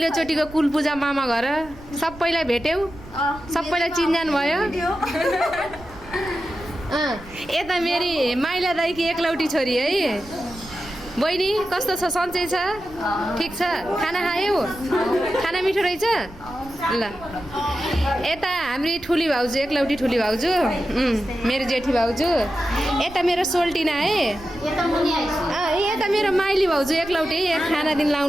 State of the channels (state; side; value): noise; right; rumble, 19 dB below the sound